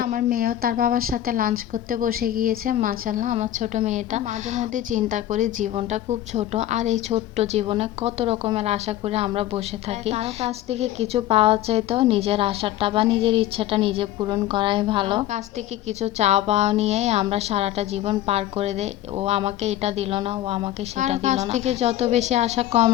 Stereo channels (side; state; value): right; quieter; 13.2 dB